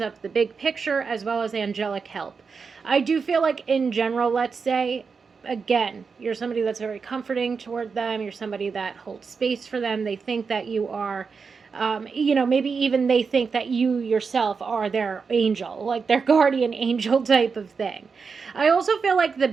up the big picture as well as angelic help. I do feel like, in general, let's say, again, you're somebody that's very comforting toward them. You're somebody that holds space for them. They think that you are, maybe even they think that you yourself are their angel, like their guardian angel type of thing. I also feel like the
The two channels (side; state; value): left; quieter; 5.3 dB